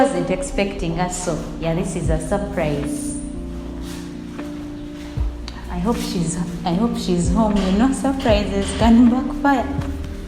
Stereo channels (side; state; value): both; identical; correlation 1.00